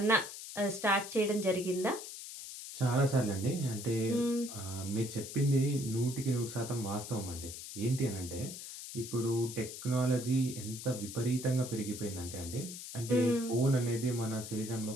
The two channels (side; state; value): left; noise; hiss, 10 dB below the sound